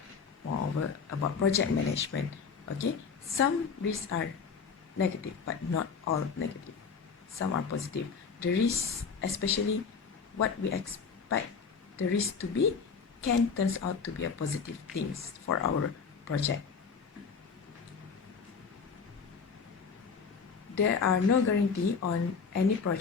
moreover about project management? Okay, some risks are negative, but not all negative. Some are positive. The risk, especially what we expect the risk to be, can turns out to be a positive things for our project. There are no guarantee on any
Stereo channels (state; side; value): quieter; right; 5.6 dB